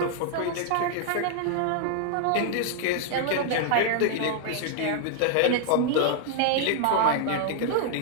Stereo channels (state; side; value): different; both; correlation 0.00